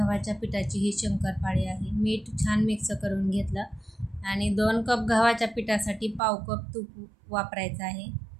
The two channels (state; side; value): drops out; left; at 6.2 s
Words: पिठाची ही शंकरपाळी आहे. मीठ छान मिक्स करून घेतलं आणि 2 कप गव्हाच्या पिठासाठी पाव कप तूप वापरायचं आहे.